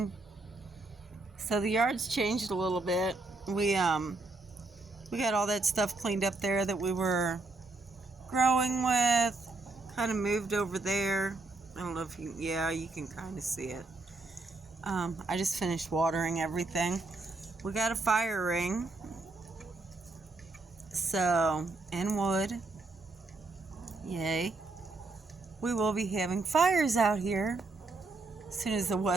So the yard's changed a little bit. We got all that stuff cleaned up there that we were growing with. Kind of moved over there. I don't know if you can kind of see it. I just finished watering everything. We got a fire ring. So, and wood. Yay. We will be having fires out here as soon as the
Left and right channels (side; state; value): left; quieter; 3.4 dB